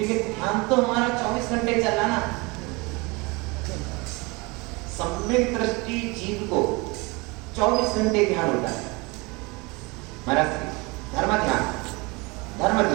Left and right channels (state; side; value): quieter; left; 26.3 dB